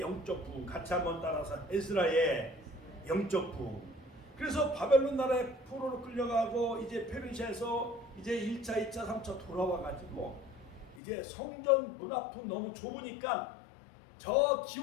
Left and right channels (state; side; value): drops out; right; at 11.0 s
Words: 부흥 같이 한번 따라서 에스라의 영적 부흥. 그래서 바벨론 나라의 포로로 끌려가고 이제 페르시아에서 이제 1차, 2차, 3차 돌아와가지고 이제 성전 문 앞은 너무 좁으니까 저